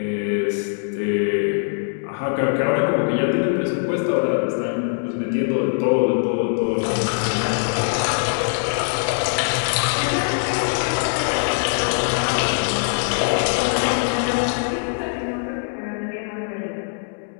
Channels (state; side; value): silent; right; digital silence